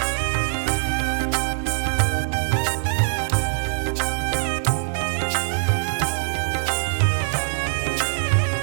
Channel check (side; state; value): left; silent; digital silence